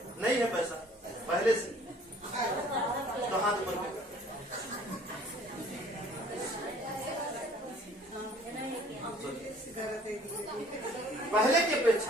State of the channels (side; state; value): both; normal; correlation 0.54